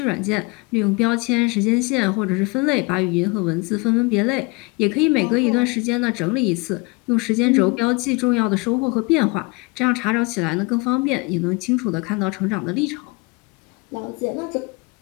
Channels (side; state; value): right; quieter; 27.1 dB